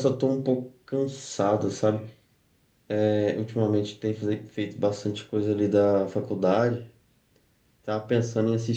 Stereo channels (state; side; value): identical; both; correlation 1.00